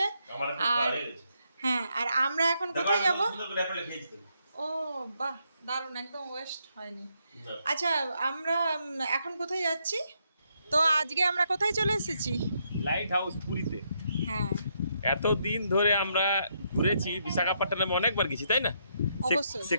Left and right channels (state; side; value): inverted; both; correlation -0.77